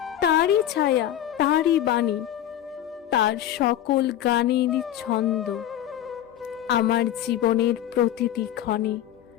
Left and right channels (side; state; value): right; quieter; 11.6 dB